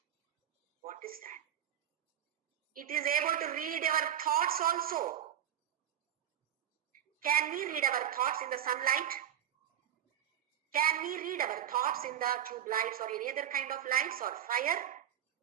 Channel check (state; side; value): quieter; left; 10.4 dB